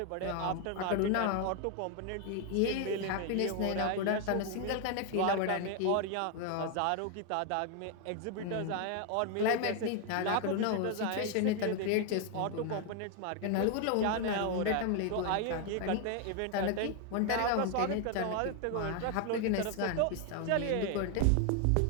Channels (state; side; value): different; both; correlation 0.01